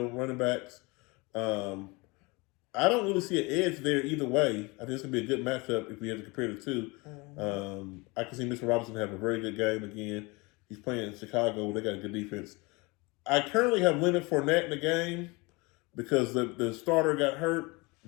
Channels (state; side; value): quieter; right; 26.0 dB